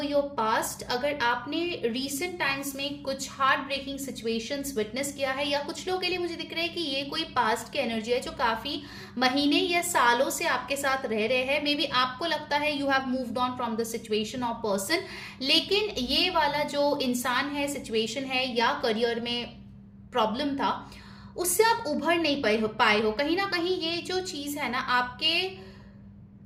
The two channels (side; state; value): both; identical; correlation 1.00